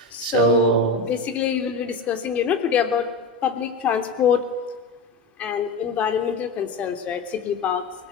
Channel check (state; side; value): quieter; right; 3.5 dB